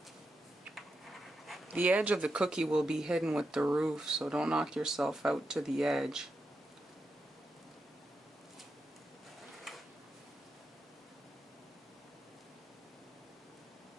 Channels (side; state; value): both; normal; correlation 0.86